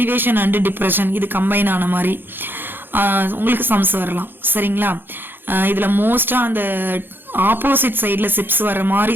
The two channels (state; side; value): late; left; 0.099 ms